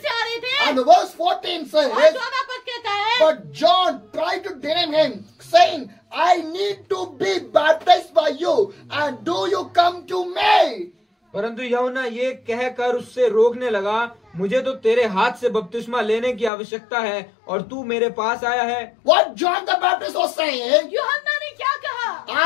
से आ रहे थे And the verse 14 और says, 14 पद कहता है but John tried to deny him, saying, I need to be baptized by you, and do you come to me? परंतु यूहन्ना ये कहकर उससे रोकने लगा, मुझे तो तेरे हाथ से बपतिस्मा लेने की आवश्यकता है और तू मेरे पास आया है। What John the Baptist was saying, यूहन्ना ने क्या कहा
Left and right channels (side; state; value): right; drops out; at 16.5 s